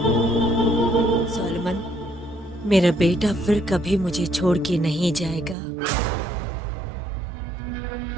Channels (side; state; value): left; drops out; at 5.6 s